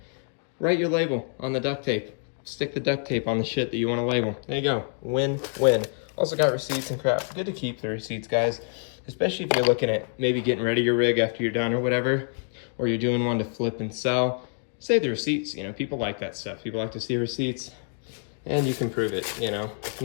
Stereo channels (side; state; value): right; silent; 55 dB below the other